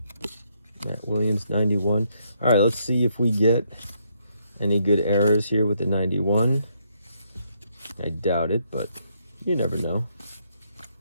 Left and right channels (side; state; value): both; inverted; correlation -0.74